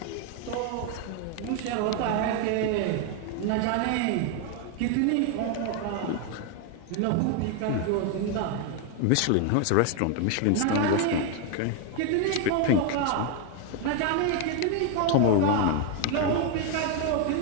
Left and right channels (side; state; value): both; different; correlation 0.01